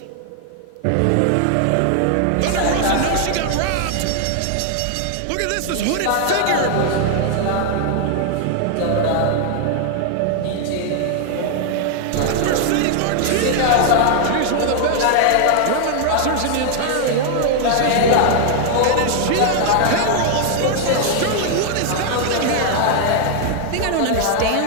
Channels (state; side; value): different; both; correlation 0.00